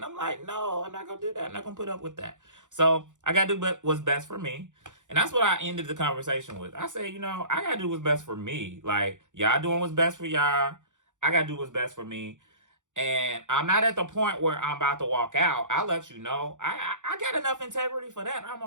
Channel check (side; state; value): left; late; 0.86 ms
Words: I'm like, no, I'm not going to do that. I'm not going to put up with that. So I got to do what's best for me. And that's what I ended the conversation with. I said, I got to do what's best for me. Like, y'all doing what's best for y'all. I got to do what's best for me. And I'm not at the point where I'm about to walk out. I'll let you know. I got enough integrity for that. I'm